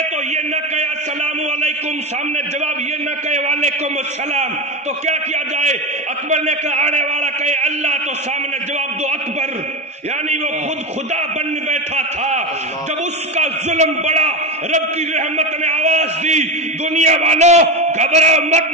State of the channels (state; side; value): normal; both; correlation 0.18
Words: تو یہ نہ کہے السلام علیکم, سامنے جواب یہ نہ کہے وعلیکم السلام, تو کیا کیا جائے. اکبر نے کہا آنے والا کہے اللہ, تو سامنے جواب دو اکبر, یعنی وہ خود خدا بن بیٹھا تھا. جب اس کا ظلم بڑا, رب کی رحمت نے آواز دی دنیا والوں گھبراؤ مت,